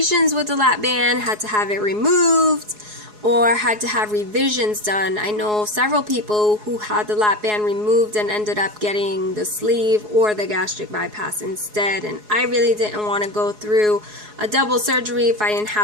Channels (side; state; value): left; late; 4.7 ms